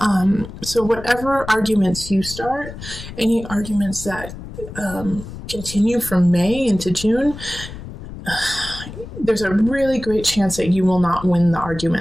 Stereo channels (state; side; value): noise; left; rumble, 12 dB below the sound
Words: So whatever arguments you start, any arguments that continue from May into June, there's a really great chance that you will not win the